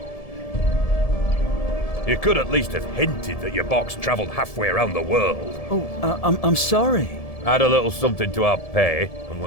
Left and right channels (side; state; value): right; late; 1.7 ms